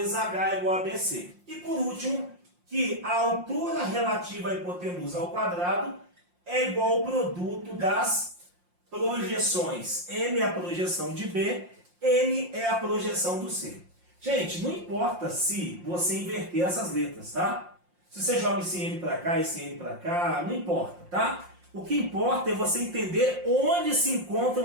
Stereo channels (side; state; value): left; late; 5.6 ms